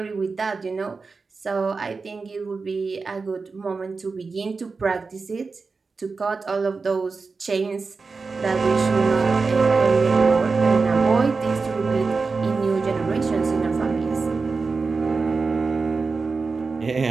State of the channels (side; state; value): left; quieter; 4.4 dB